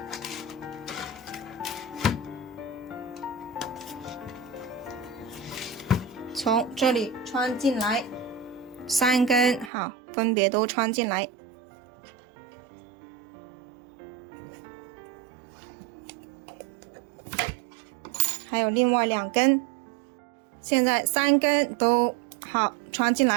从这里穿进来，3根好，分别都穿进来。还有另外2根，现在3根都好穿进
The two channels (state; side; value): drops out; left; at 9.7 s